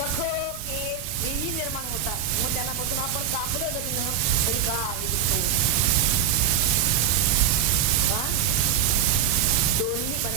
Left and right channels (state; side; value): quieter; left; 8.1 dB